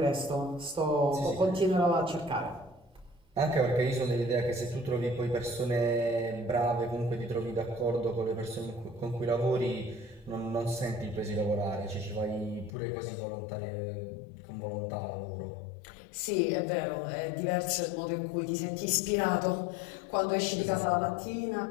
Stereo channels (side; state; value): right; drops out; at 12.7 s